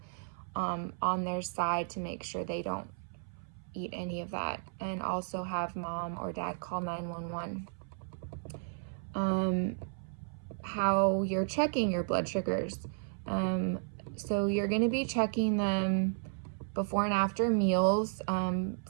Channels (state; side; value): silent; left; 55 dB below the other